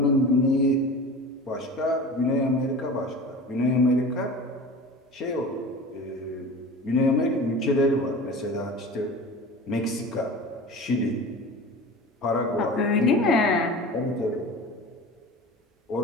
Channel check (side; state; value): both; normal; correlation 0.35